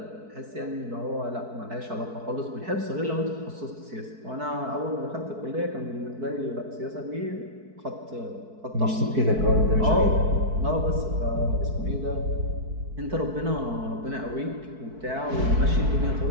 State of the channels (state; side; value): late; left; 4.6 ms